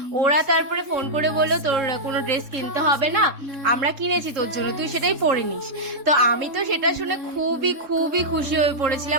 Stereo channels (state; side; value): late; left; 3.6 ms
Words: ওরা তারপরে ফোন করে বললো তোর কোনো ড্রেস কিনতে হবে না, আমরা কিনেছি তোর জন্য, তুই সেটাই পরে নিস। তো আমি তো সেটা শুনে খুবই খুবই খুশি হয়ে